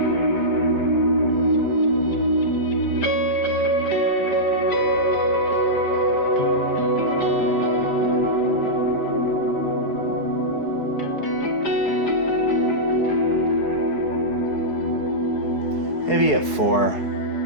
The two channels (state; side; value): late; right; 5.4 ms